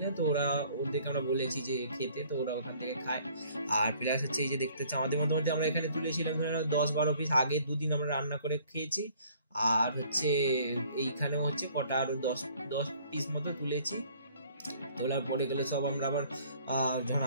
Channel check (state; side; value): inverted; both; correlation -0.57